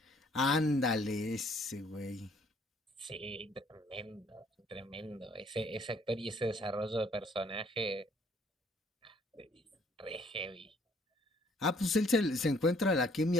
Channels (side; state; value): both; normal; correlation 0.62